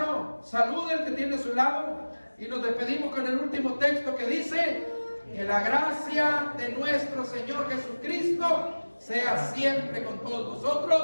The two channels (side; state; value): both; inverted; correlation -1.00